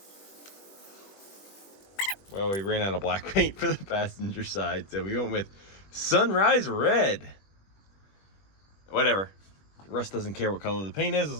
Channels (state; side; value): late; right; 20 ms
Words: Well, we ran out of black paint for the passenger side, so we went with Sunrise Red. Whatever. Russ doesn't care what color the paint is